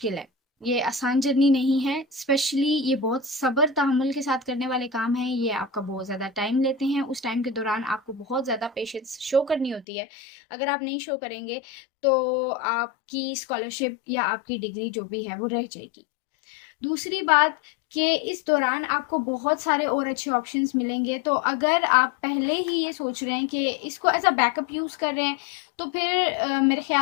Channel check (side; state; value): right; drops out; at 9.9 s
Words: है, ये आसान जर्नी नहीं है। स्पेशली ये बहुत सब्र तहम्मुल के साथ करने वाले काम हैं। ये आपका बहुत ज़्यादा टाइम लेते हैं। उस टाइम के दौरान आपको बहुत ज़्यादा पेशेंस शो करनी होती है। अगर आप नहीं शो करेंगे तो आपकी स्कॉलरशिप या आपकी डिग्री जो भी है वो रह जाएगी। दूसरी बात कि इस दौरान आपको बहुत सारे और अच्छे ऑप्शंस मिलेंगे। तो अगर आप पहले ही ये सोच रहे हैं कि इसको एज अ बैकअप यूज़ कर रहे हैं तो फिर मेरे